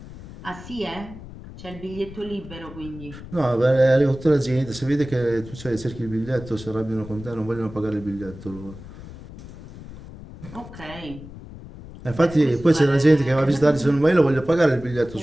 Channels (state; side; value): noise; left; rumble, 15 dB below the sound